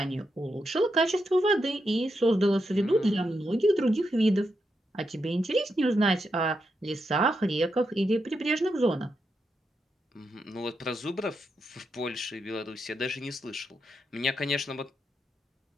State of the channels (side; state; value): both; normal; correlation 0.84